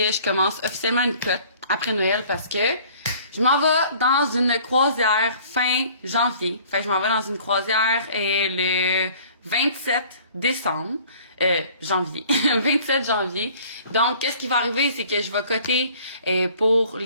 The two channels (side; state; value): both; inverted; correlation -0.52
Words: je commence officiellement une cote après Noël parce que je m'en vais dans une croisière fin janvier. Fait que je m'en vais dans une croisière le 27 décembre. Janvier. 27 janvier. Donc, qu'est-ce qui va arriver, c'est que je vais coter pour